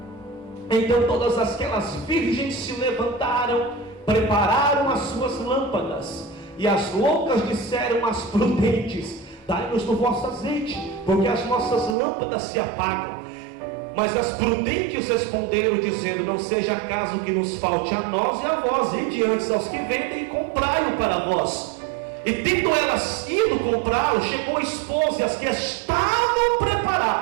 Então todas aquelas virgens se levantaram, prepararam as suas lâmpadas, e as loucas disseram às prudentes: dai-nos do vosso azeite, porque as nossas lâmpadas se apagam. Mas as prudentes responderam, dizendo: não seja caso que nos falte a nós e a vós, e diante aos que vendem, e comprai-o para vós. E tendo elas ido comprá-lo, chegou o esposo, e as que estavam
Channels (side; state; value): left; drops out; at 12.0 s